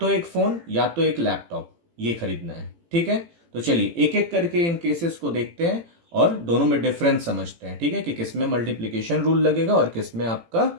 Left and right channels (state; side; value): late; left; 18 ms